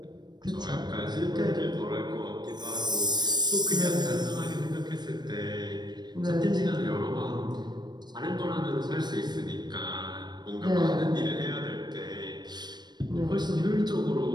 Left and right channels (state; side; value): late; left; 0.21 ms